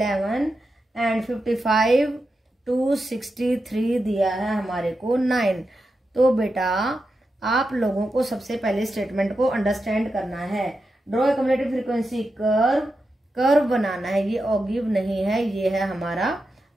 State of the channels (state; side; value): normal; both; correlation 0.89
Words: एंड 55 to 63 दिया है हमारे को 9। तो बेटा आप लोगों को सबसे पहले स्टेटमेंट को अंडरस्टैंड करना है। Draw a cumulative frequency curve, curve बनाना है, ये ऑगिव नहीं है, ये है हमारा